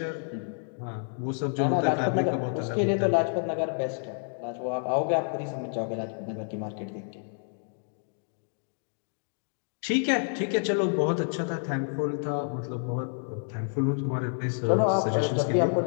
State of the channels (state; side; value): silent; right; 57 dB below the other